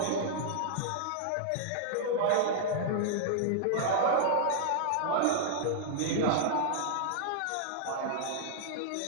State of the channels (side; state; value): both; different; correlation -0.01